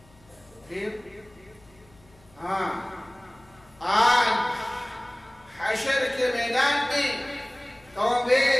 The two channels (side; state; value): left; noise; hum, 28 dB below the sound